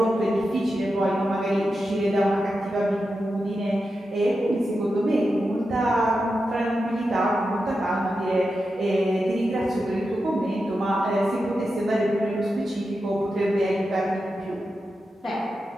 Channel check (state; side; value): normal; both; correlation 0.89